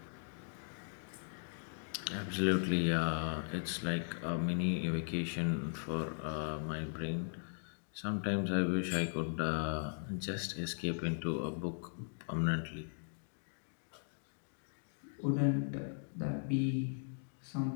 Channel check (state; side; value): silent; right; digital silence